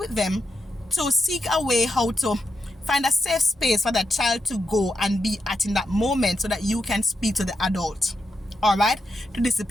them to seek a way how to Find a safe space for that child to go and be at in that moment so that you can speak to the adult. All right? To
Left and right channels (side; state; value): both; normal; correlation 0.85